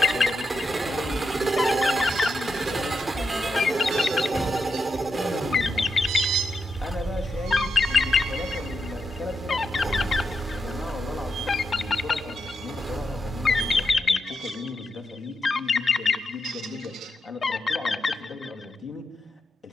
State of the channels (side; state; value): both; normal; correlation 0.85